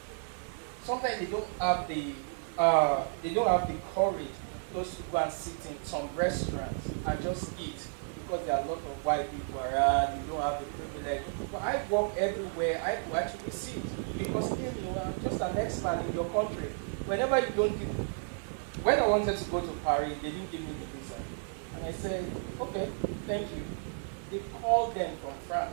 Sometimes they don't have the courage just to go and sit in some restaurants and just eat, because there are a lot of white people around, you don't have the privilege. But I walk everywhere, I will actually sit, because I'm just an expert in your country. Whenever you don't when I wanted to go to Paris, they didn't give me the visa. And I said, okay, thank you. They called them from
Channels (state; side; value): silent; left; 56 dB below the other